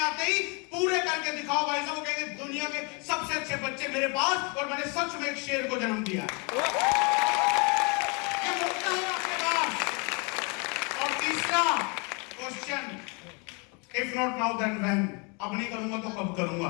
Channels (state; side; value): quieter; right; 32.6 dB